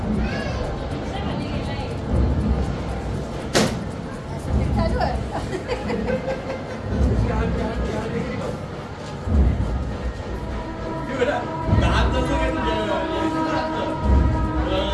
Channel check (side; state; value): both; identical; correlation 1.00